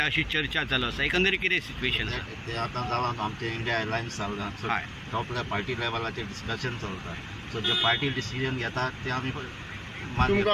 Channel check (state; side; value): identical; both; correlation 1.00